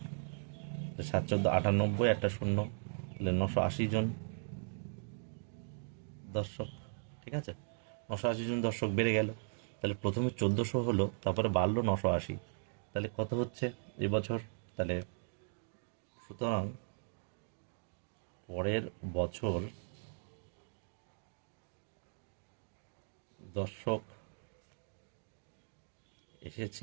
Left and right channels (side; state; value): left; silent; digital silence